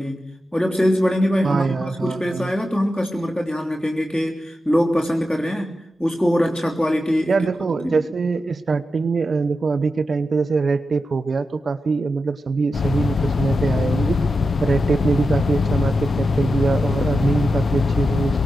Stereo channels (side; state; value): both; normal; correlation 0.89